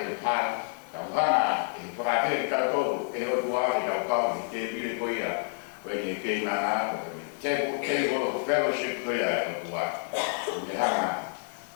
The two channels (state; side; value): silent; right; 56 dB below the other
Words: pāna. Kau hana e whakate e kau tō. E o tua i kau i te pire koe ia. Koe ni kei nana, te fellowship koe ia e o tua. Me hana,